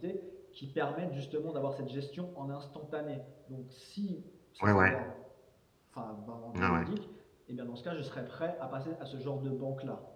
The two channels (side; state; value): both; identical; correlation 1.00